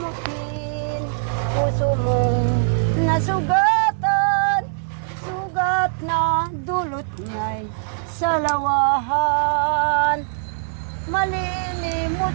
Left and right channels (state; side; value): silent; left; digital silence